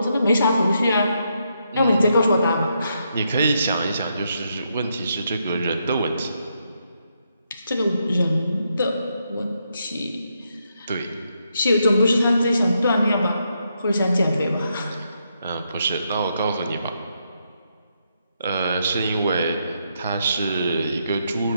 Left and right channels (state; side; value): inverted; both; correlation -0.79